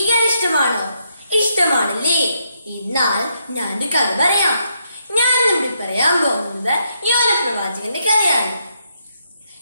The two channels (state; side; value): inverted; both; correlation -0.78